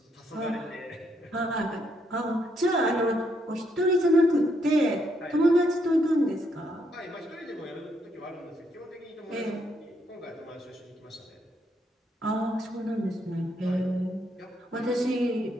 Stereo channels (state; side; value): normal; both; correlation 0.75